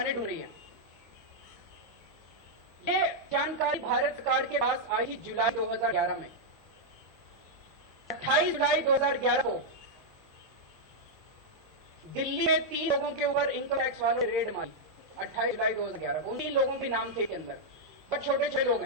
ढूंढ रही है। ये जानकारी भारत सरकार के पास आई जुलाई 2011 में। 28 जुलाई 2011 को दिल्ली में 3 लोगों के ऊपर इनकम टैक्स वालों ने रेड मारी। 28 जुलाई 2011 को उन 3 लोगों के नाम थे के अंदर, बहुत छोटे छोटे लोग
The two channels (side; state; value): both; normal; correlation -0.03